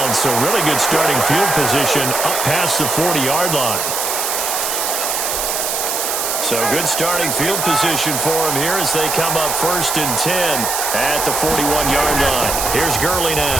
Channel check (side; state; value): right; noise; hiss, 1 dB below the sound